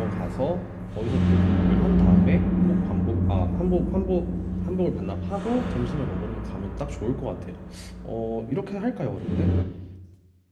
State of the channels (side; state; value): both; identical; correlation 1.00